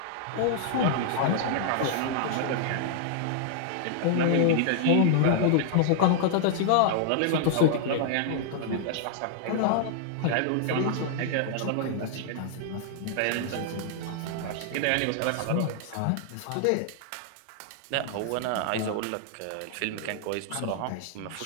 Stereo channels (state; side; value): different; both; correlation -0.01